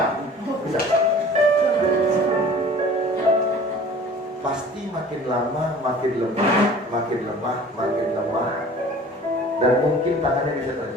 Bisa. Pasti makin lama makin lemah, dan mungkin tangannya bisa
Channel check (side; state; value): both; normal; correlation 0.46